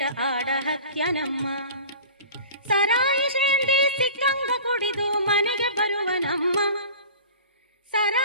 ಆಡ ಹತ್ಯನಮ್ಮ. ಸರಾಯಿ ಶೇಂದಿ ಸಿಕ್ಕಂಗ ಕುಡಿದು ಮನೆಗೆ ಬರುವನಮ್ಮ.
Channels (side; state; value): both; inverted; correlation -0.40